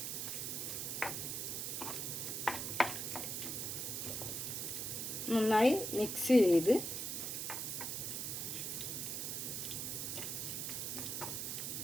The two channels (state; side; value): noise; right; hiss, 2 dB below the sound